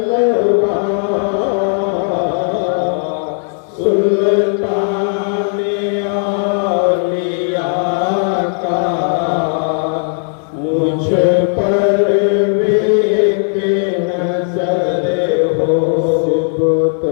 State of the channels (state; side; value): silent; right; digital silence